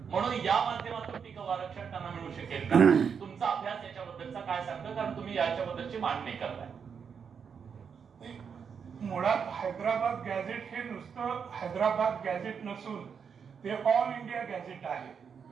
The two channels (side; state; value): left; quieter; 6.7 dB